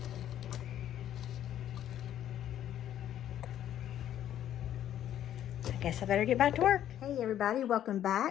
I guess I better get back to work. Hey everybody, welcome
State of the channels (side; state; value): right; quieter; 11.2 dB